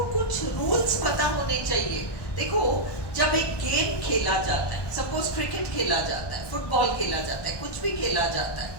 कुछ रूल्स पता होने चाहिए। देखो, जब एक गेम खेला जाता है, सपोज क्रिकेट खेला जाता है, फुटबॉल खेला जाता है, कुछ भी खेला जाता है,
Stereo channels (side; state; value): right; late; 1.2 ms